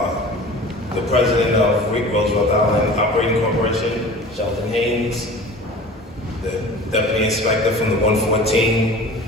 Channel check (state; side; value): normal; both; correlation 0.40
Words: the president of Roosevelt Island Operating Corporation, Sheldon Haynes, the deputy inspector from the 114,